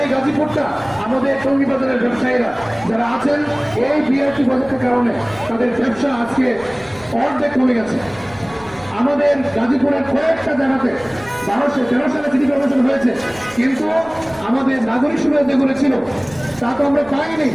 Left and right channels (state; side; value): noise; left; rumble, 22 dB below the sound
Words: এই গাজীপুরটা, আমাদের টঙ্গী বাজারের ব্যবসায়ীরা যারা আছেন, এই বিআরটি প্রজেক্টের কারণে তাদের ব্যবসা আজকে অর্ধেক কমে গেছে। আমাদের গাজীপুরের কয়েকটা জায়গাতে 1213 সালে সিটি কর্পোরেশন হয়েছে, কিন্তু আমাদের নাগরিক সুবিধা যেগুলো ছিল তা তো আমরা পাইনি।